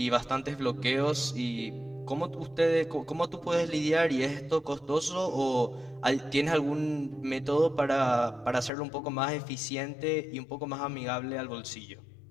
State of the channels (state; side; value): drops out; right; at 8.7 s